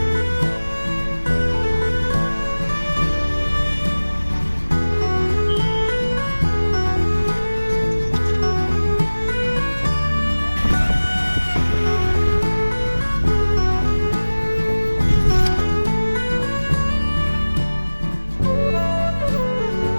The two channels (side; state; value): both; inverted; correlation -1.00